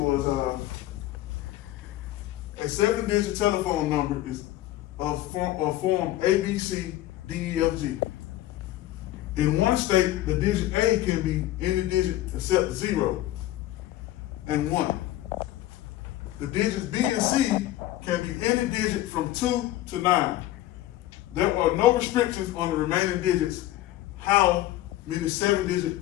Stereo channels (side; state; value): right; quieter; 15.1 dB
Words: was, a 7-digit telephone number is of form A, B, C, D, E, F, G. In one state, the digit A can be any digit except 0 and 1. The digits B and C can be any digit from 2 to 9. There are no restrictions on the remaining digits. How many